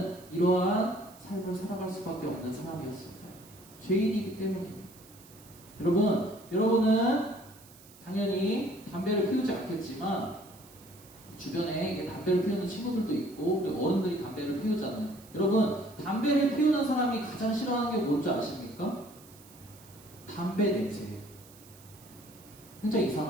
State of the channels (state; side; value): noise; right; hiss, 23 dB below the sound